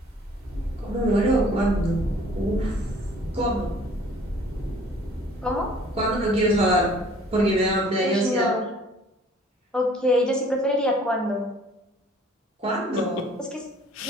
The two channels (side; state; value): both; normal; correlation 0.54